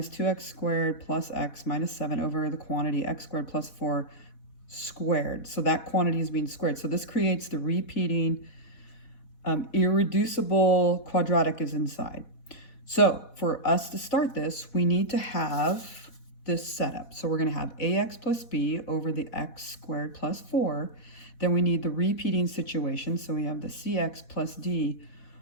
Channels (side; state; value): right; late; 4.1 ms